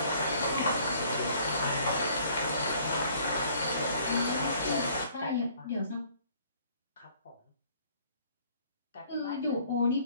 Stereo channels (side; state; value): both; inverted; correlation -0.58